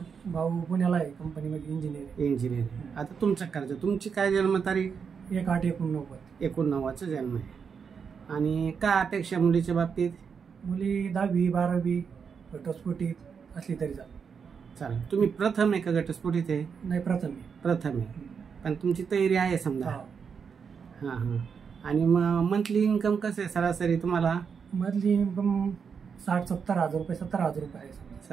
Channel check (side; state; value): left; quieter; 6.3 dB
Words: भाऊ पुण्याला आहे, कंपनीमध्ये इंजिनियर. आता तुमचं करायचं. तुमची काय जन्मतारीख? 1/8/89. 89चा जन्म आहे. आणि काय अपेक्षा मुलीच्या बाबतीत? मुली 10वी 12वी घटस्फोटीत असली तरी चालेल. तुम्ही प्रथम आहे का घटस्फोटीत आहे? नाही, प्रथम आहे. पण तुमची तयारी आहे समजा. हां हां. आणि मग मंथली इन्कम कसं आहे सरासरी तुम्हाला? मंथली इन्कम 60-70 हजार रुपये, 70,000 रुपये आहे.